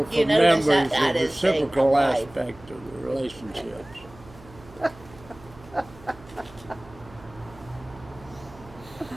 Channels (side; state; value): right; noise; hum, 21 dB below the sound